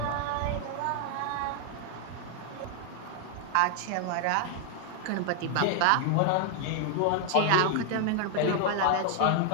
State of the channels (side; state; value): both; different; correlation 0.00